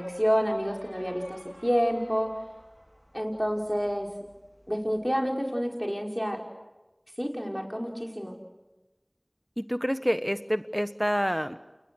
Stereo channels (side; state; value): both; identical; correlation 1.00